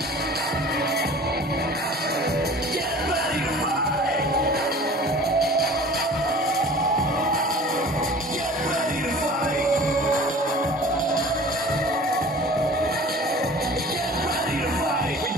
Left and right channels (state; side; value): normal; both; correlation 0.44